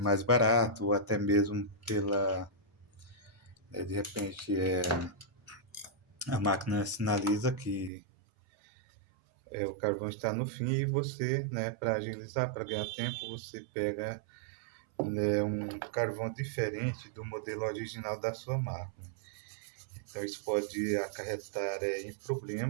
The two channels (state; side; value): drops out; left; at 7.9 s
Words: barato, ou até mesmo de repente, a máquina sinaliza que o carvão está no fim e você, né, para agilizar, para ganhar tempo, você pega, né, um carvão diferente do modelo original da sua máquina. Então, isso pode acarretar em